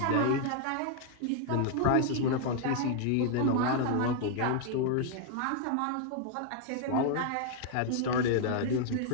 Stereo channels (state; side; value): different; both; correlation 0.00